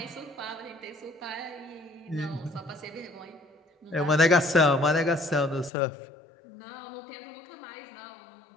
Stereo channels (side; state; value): right; drops out; at 5.7 s